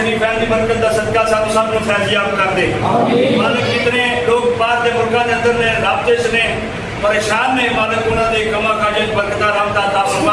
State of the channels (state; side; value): identical; both; correlation 1.00